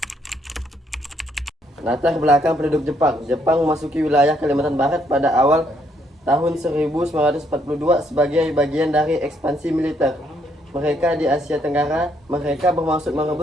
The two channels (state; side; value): normal; both; correlation 0.71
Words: Latar belakang penduduk Jepang. Jepang memasuki wilayah Kalimantan Barat pada awal tahun 1942 sebagai bagian dari ekspansi militer mereka di Asia Tenggara. Mereka bermaksud